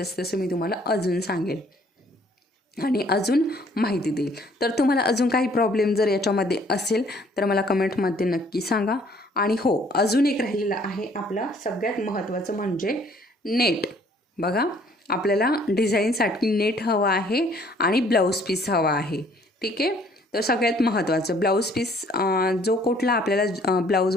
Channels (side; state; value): both; normal; correlation 0.60